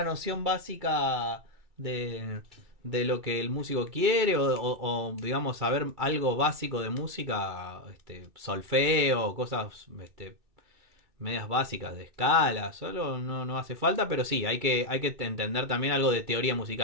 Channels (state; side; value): late; left; 2.3 ms